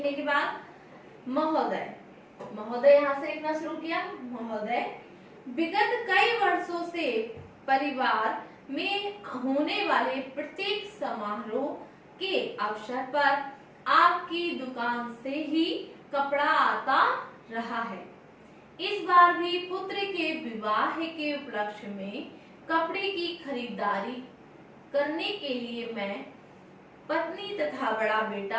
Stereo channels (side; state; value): both; identical; correlation 1.00